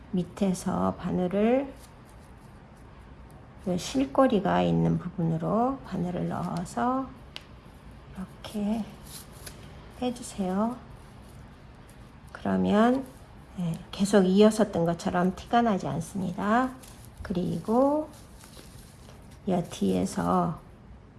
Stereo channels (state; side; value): identical; both; correlation 1.00